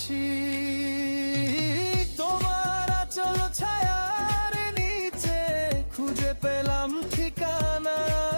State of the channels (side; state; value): both; inverted; correlation -1.00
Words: তোমার আঁচল ছায়ার নিচে খুঁজে পেলাম ঠিকানা,